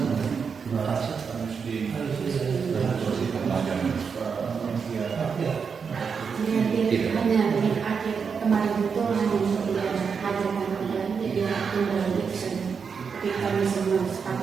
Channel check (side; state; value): left; quieter; 6.0 dB